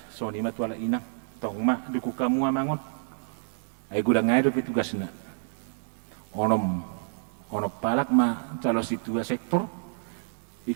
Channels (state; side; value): silent; left; 59 dB below the other